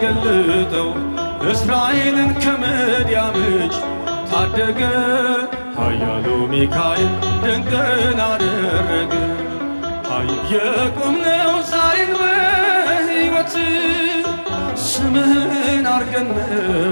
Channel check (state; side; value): inverted; both; correlation -1.00